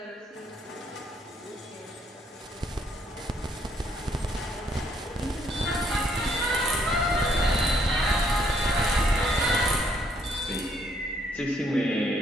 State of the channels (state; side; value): normal; both; correlation 0.68